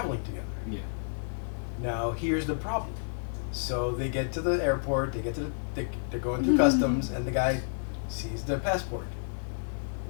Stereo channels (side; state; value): right; silent; 58 dB below the other